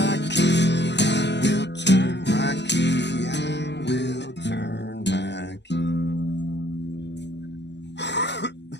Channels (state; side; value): late; right; 0.51 ms